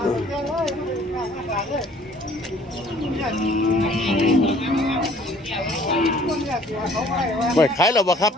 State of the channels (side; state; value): both; normal; correlation 0.55